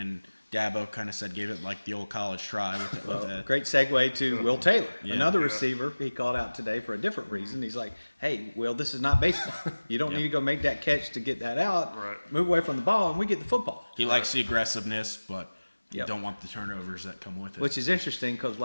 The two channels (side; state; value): both; inverted; correlation -1.00